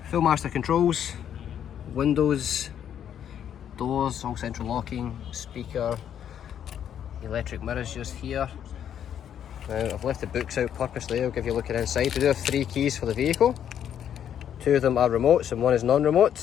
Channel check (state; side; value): quieter; right; 9.4 dB